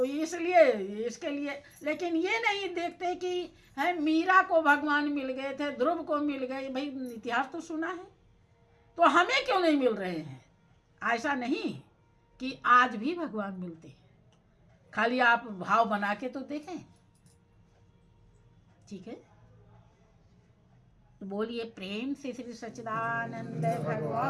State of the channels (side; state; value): both; identical; correlation 1.00